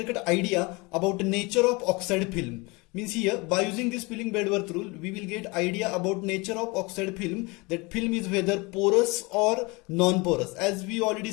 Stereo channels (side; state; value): right; quieter; 26.2 dB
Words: idea about the nature of oxide film. Means here by using this Pilling-Bedworth rule we will get idea about nature of oxide film, that film is whether porous or non-porous. As we already